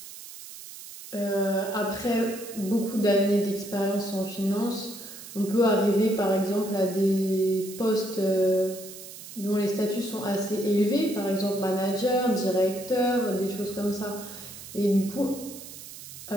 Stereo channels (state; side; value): noise; right; hiss, 14 dB below the sound